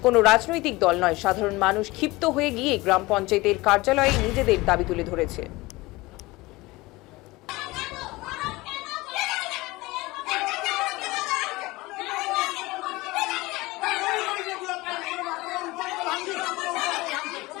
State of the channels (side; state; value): right; quieter; 21.1 dB